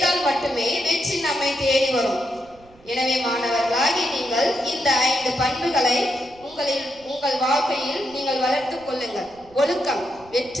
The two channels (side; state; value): right; noise; rumble, 26 dB below the sound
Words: மட்டுமே வெற்றி நம்மை தேடி வரும். எனவே மாணவர்களாகி நீங்கள் இந்த 5 பண்புகளை உங்கள் வாழ்க்கையில் நீங்கள் வளர்த்துக் கொள்ளுங்கள். ஒழுக்கம்